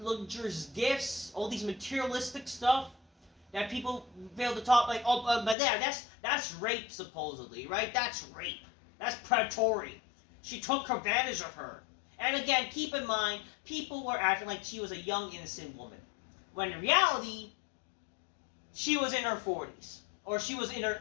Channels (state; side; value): drops out; right; at 5.6 s